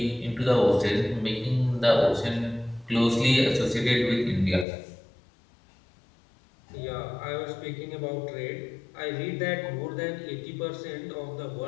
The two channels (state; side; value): drops out; right; at 4.7 s